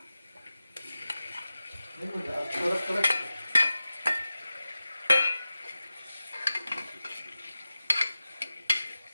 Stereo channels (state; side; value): inverted; both; correlation -0.94